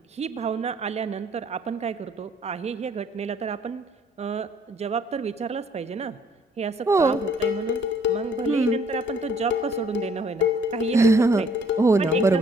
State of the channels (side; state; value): both; normal; correlation 0.61